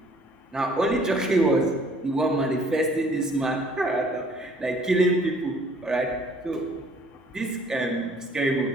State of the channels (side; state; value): both; normal; correlation 0.58